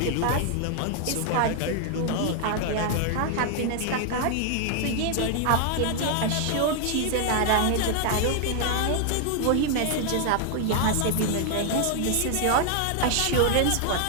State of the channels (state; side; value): different; both; correlation 0.00